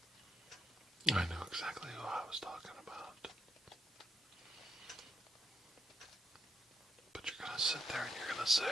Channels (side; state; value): both; normal; correlation 0.79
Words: I knew exactly who I was talking about. But you're going to sit there and you're going to